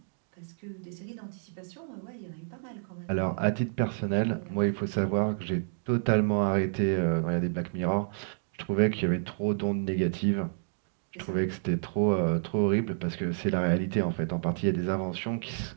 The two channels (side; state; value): left; silent; digital silence